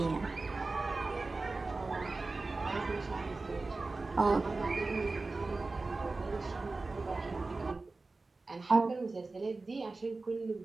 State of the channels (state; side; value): quieter; left; 3.5 dB